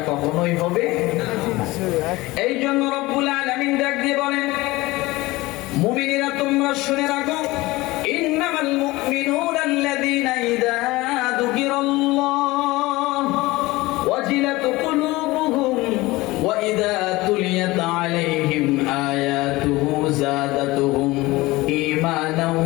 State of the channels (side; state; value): right; quieter; 20.3 dB